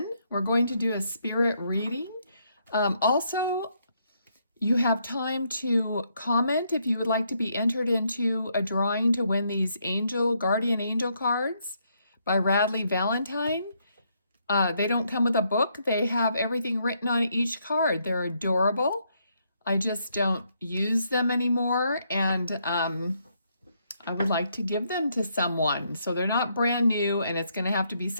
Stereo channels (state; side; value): inverted; both; correlation -0.74